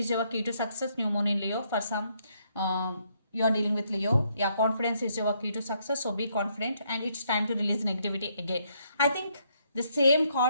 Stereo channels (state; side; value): inverted; both; correlation -0.73